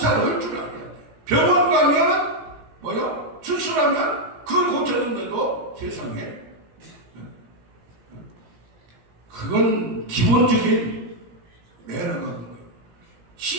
할 줄 알아야 돼요. 병원 가면 뭐요? 수술하면 그걸 고쳤는데도 세상에 그건 기본적인 매너가 거예요.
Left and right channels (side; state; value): left; late; 17 ms